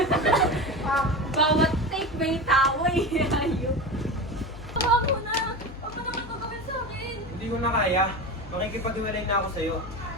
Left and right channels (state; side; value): noise; left; hum, 15 dB below the sound